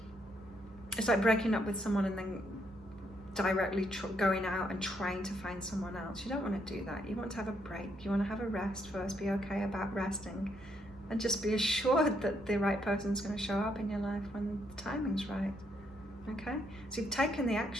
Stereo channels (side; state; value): both; normal; correlation 0.74